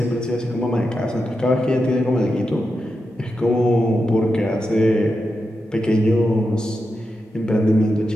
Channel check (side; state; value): both; normal; correlation 0.88